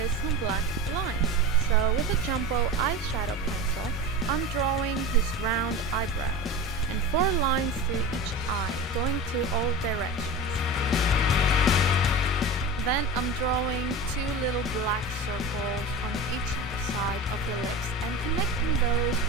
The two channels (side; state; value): both; normal; correlation 0.29